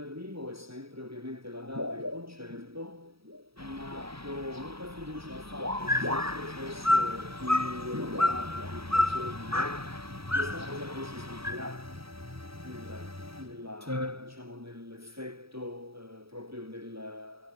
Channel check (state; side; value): late; left; 0.76 ms